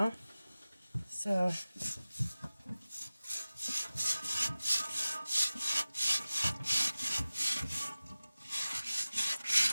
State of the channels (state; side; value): inverted; both; correlation -0.97